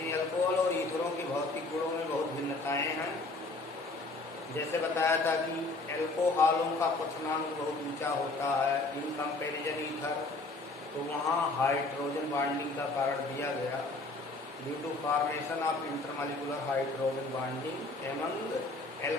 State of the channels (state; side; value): quieter; right; 3.2 dB